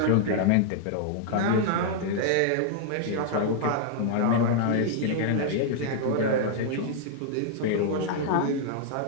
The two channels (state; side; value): different; both; correlation -0.01